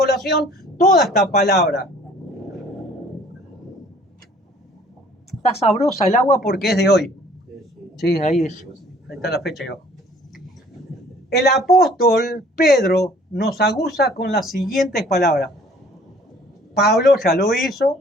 toda esta palabra. Está sabrosa el agua porque es de hoy. Sí, ahí está la fecha. El apóstol Pedro nos aguza con las siguientes palabras. Pablo ya lo hizo,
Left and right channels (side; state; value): both; normal; correlation 0.55